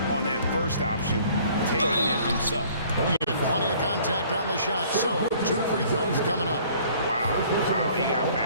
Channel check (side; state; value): both; inverted; correlation -0.55